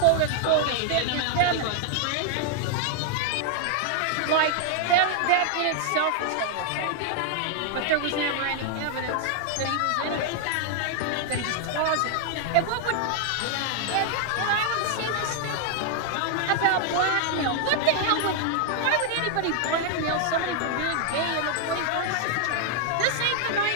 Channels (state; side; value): different; both; correlation 0.00